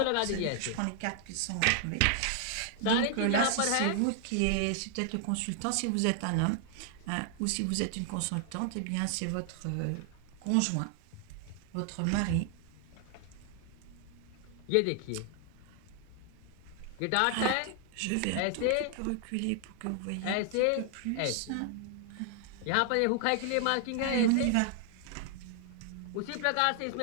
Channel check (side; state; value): both; different; correlation 0.00